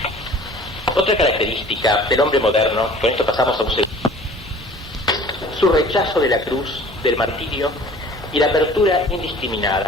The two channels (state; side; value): normal; both; correlation 0.48